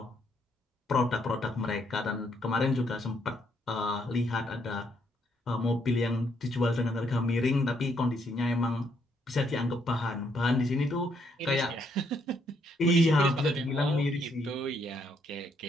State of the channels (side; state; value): both; normal; correlation 0.73